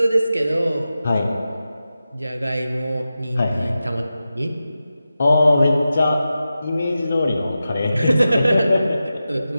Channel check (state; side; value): inverted; both; correlation -0.92